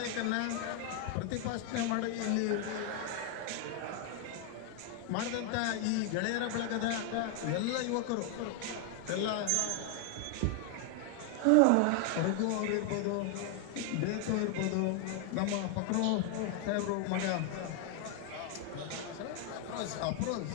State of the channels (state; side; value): different; both; correlation 0.00